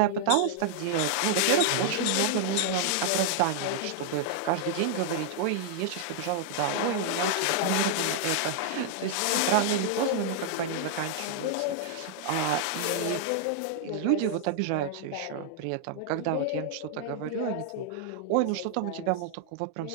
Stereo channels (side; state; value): both; different; correlation -0.01